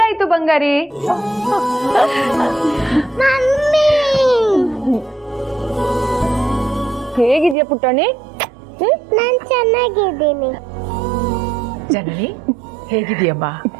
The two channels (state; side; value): drops out; left; at 7.6 s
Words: ಬಂಗಾರಿ. ಮಮ್ಮಿ ಹೇಗಿದ್ಯಾ ಪುಟ್ಟಣಿ? ನಾನ್ ಚೆನ್ನಾಗಿದ್ದೀನಿ. ಜನನಿ ಹೇಗಿದೆಯಮ್ಮ?